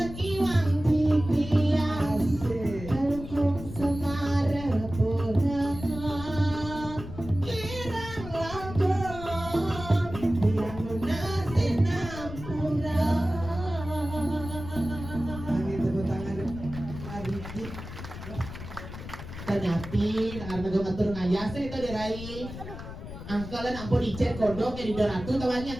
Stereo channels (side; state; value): left; noise; rumble, 11 dB below the sound